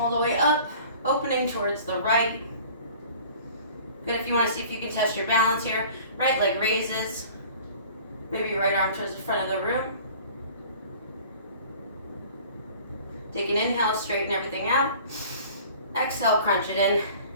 the way up, opening towards the right. Good, if you want to see if you can test your balance here. Right leg raises. Maybe right arm towards the front of the room. Take an inhale, straighten everything out. Exhale, crunch it in,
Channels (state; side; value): inverted; both; correlation -0.47